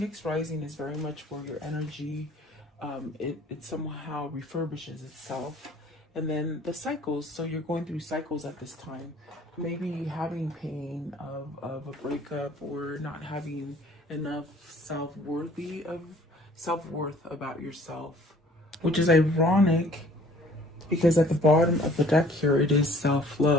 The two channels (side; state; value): both; normal; correlation 0.54